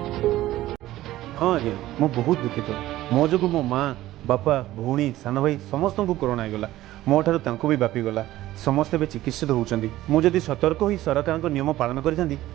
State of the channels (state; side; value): quieter; left; 15.4 dB